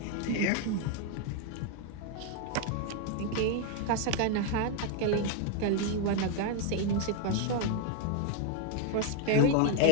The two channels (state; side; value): different; both; correlation 0.01